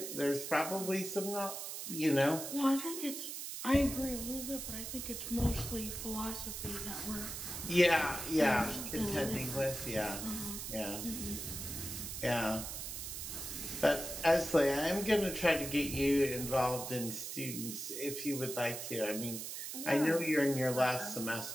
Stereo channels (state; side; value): noise; right; hiss, 6 dB below the sound